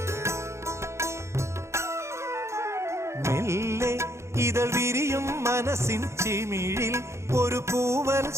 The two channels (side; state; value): left; late; 0.13 ms